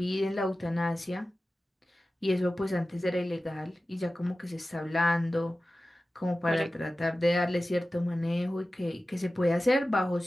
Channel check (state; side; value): normal; both; correlation 0.95